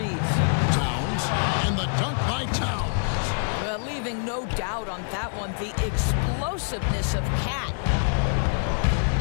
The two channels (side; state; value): right; silent; 56 dB below the other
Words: Towns, and the dunk by Towns. Leaving no doubt on that one, the explosiveness of Cat.